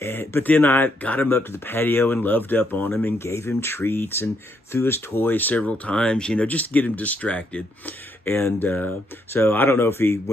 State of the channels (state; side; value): normal; both; correlation 0.75